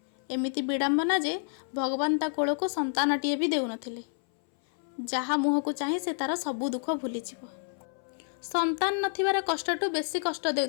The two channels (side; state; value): right; silent; 58 dB below the other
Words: एमिति विडंबना जे भगवान ता कोल को संतानटीए भी देउ नथिले। जहा मुह को चाहे से तार सबू दुख भूली जीव। संतान नथिबार कष्टटू बेसी कष्ट